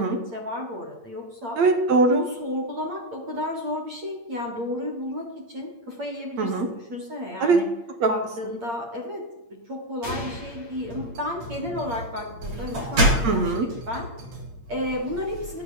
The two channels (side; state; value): left; late; 8.6 ms